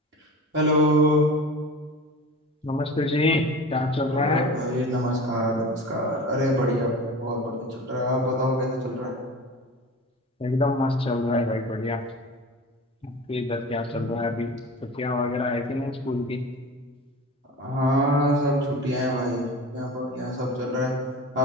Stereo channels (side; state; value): both; normal; correlation 0.35